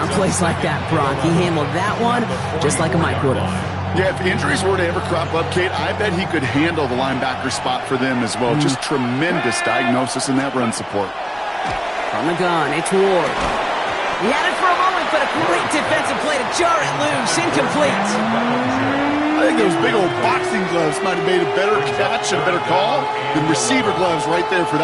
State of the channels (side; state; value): both; identical; correlation 1.00